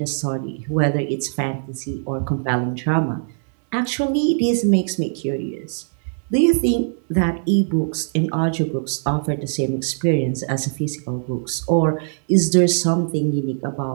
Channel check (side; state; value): left; silent; 65 dB below the other